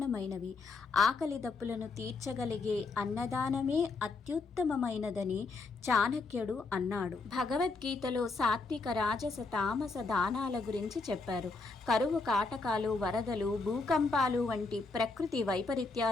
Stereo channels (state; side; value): quieter; right; 3.9 dB